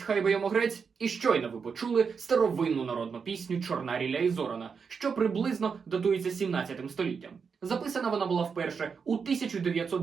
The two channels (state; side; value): quieter; left; 5.9 dB